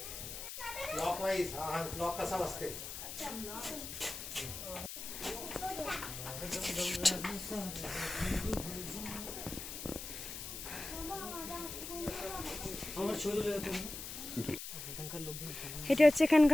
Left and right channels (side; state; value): left; noise; hiss, 8 dB below the sound